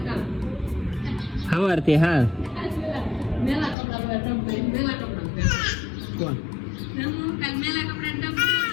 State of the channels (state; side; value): drops out; right; at 3.8 s